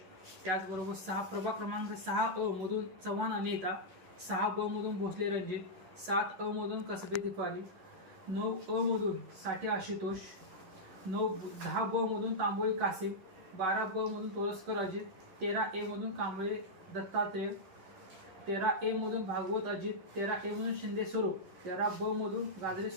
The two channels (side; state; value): left; late; 11 ms